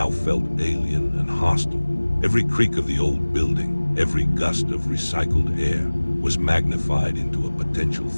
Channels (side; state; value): both; inverted; correlation -1.00